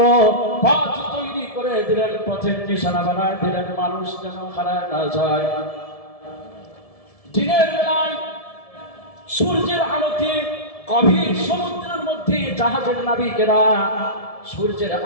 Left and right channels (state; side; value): late; right; 1.7 ms